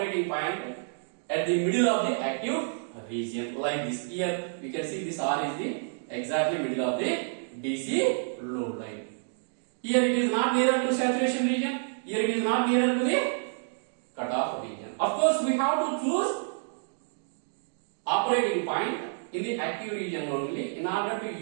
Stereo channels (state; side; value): silent; left; digital silence